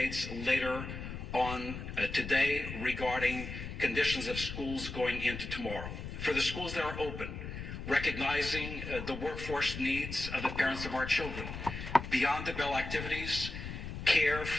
later on today regarding conditions of schools going into tomorrow. For the schools that are open, recognizing the workforce needs of the parents of our children. Beyond the bell activities, care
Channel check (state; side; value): noise; left; rumble, 8 dB below the sound